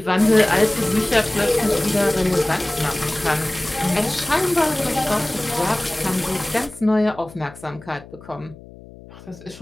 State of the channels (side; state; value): left; noise; hum, 19 dB below the sound